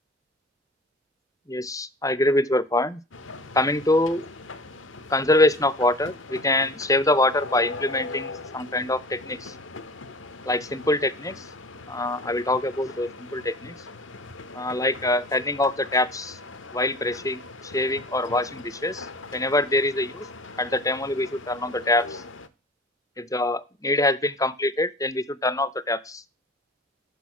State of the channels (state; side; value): normal; both; correlation 0.39